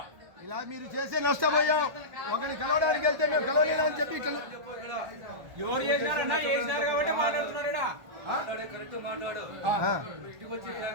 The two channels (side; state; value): left; late; 1.3 ms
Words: ఇలా మీరు చేసే నష్టపోయాం. ఒకరిని కలవడానికి వెళ్తే మేము కలవలేదని చెప్పి